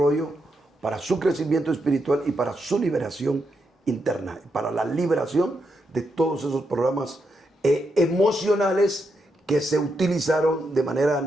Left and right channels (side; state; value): both; normal; correlation 0.82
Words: para su crecimiento espiritual y para su liberación interna, para la liberación de todos esos programas emocionales que se utilizaron de manera